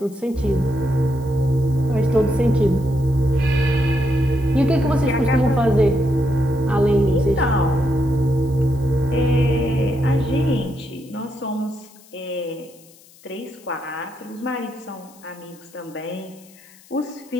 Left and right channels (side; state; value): left; noise; hiss, 26 dB below the sound